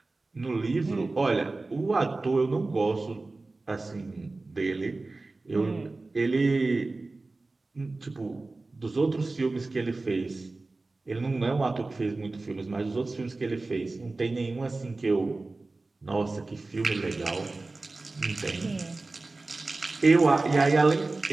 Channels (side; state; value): left; quieter; 3.3 dB